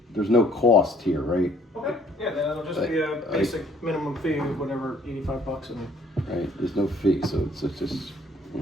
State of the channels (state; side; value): normal; both; correlation 0.60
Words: there's no cost here, right? Okay. Yeah, then it'll just be a basic minimum fee of whatever, $85, and Right? There's no fee, so it's just,